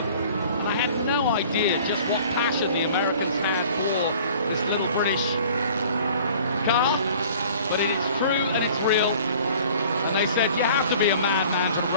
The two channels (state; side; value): inverted; both; correlation -0.49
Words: And I had no idea just what passion the Americans had for this little British car. But it is true and it's real. And they said, you have to be a madman to